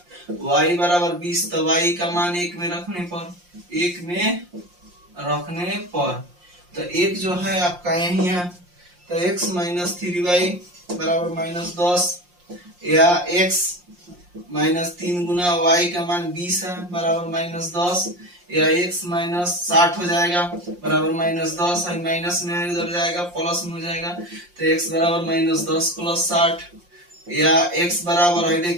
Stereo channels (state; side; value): late; left; 5.7 ms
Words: y बराबर 20, तो y का मान 1 में रखने पर, 1 में रखने पर, तो 1 जो है आपका यही है, तो x माइनस 3y बराबर माइनस 10, या x माइनस 3 गुना y का मान 20 है बराबर माइनस 10, या x माइनस 60 हो जाएगा बराबर माइनस 10, है माइनस में इधर जाएगा प्लस में हो जाएगा, तो x बराबर माइनस 10 प्लस 60, या x बराबर है